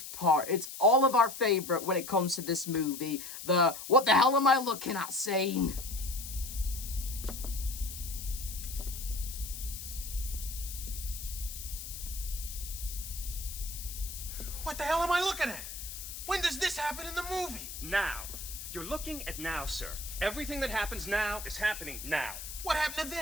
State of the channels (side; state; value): left; noise; hiss, 9 dB below the sound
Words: part. It's all of our favorite when it comes to this movie. The what the hell am I looking at scene. What the hell am I looking at? When does this happen in the movie? Now. You're looking at now, sir. Everything that happens now is happening now. What happened to